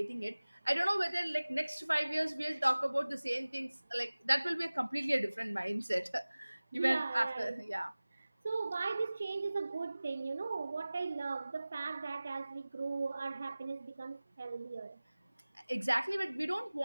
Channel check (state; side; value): inverted; both; correlation -0.99